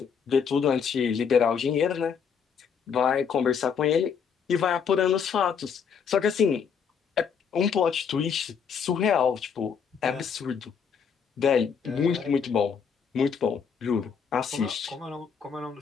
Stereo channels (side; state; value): right; quieter; 6.7 dB